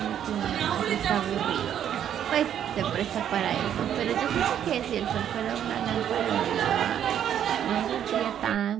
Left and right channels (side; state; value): left; quieter; 9.8 dB